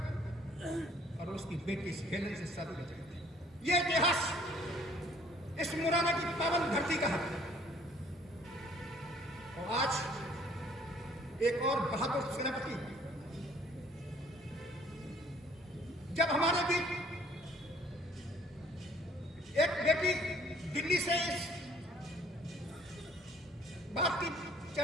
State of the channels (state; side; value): normal; both; correlation 0.58